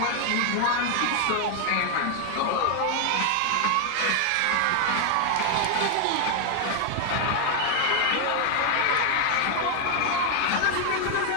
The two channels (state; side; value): different; both; correlation 0.00